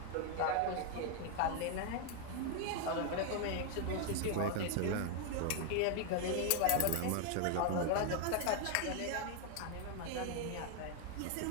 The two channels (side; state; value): both; different; correlation 0.00